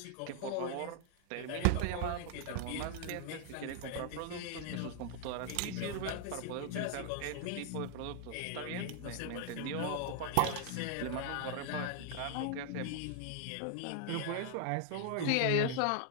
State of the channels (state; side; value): different; both; correlation 0.00